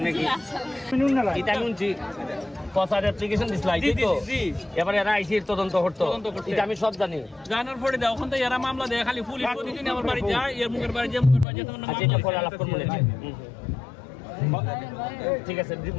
কি এটা শুনছি পসার অ্যাপ্লিকেশন দিছলাই তো এবারে এরা আইসির তদন্ত করতে এটা আমি সব জানি জানার পরে দাও ওখান থেকে এরা মামলা দেয় খালি পুলিশ প্রতিদিন আমার বাড়ি যায় এর মুখের বাড়ি যে মুখের বাড়ি যেতে আচ্ছা এটা পরে আলাপ করব ঠিক আছে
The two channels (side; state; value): right; drops out; at 11.5 s